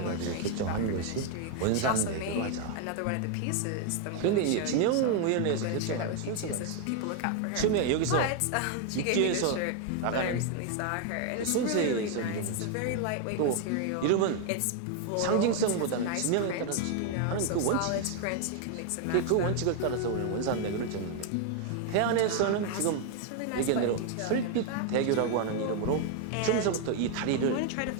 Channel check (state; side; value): different; both; correlation 0.00